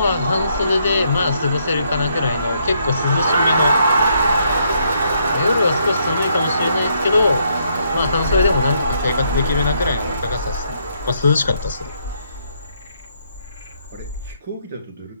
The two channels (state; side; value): inverted; both; correlation -0.73